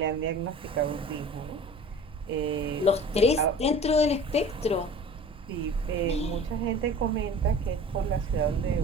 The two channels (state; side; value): normal; both; correlation 0.42